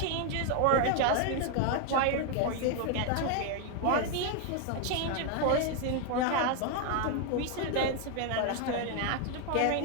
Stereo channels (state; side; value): different; both; correlation 0.00